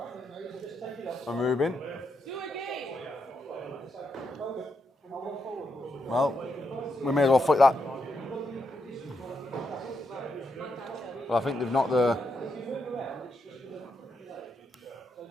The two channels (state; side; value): normal; both; correlation 0.82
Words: and Ruben. Well, we may as well flick that. Well, I think they've knocked the...